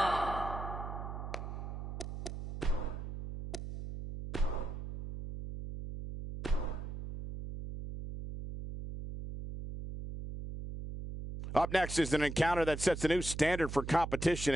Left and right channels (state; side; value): noise; right; hum, 7 dB below the sound